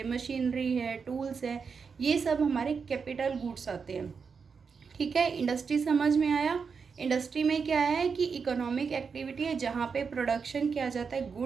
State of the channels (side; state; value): left; quieter; 5.7 dB